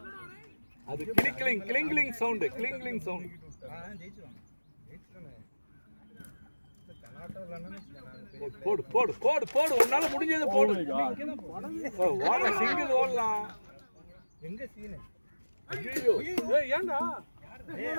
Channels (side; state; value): both; inverted; correlation -1.00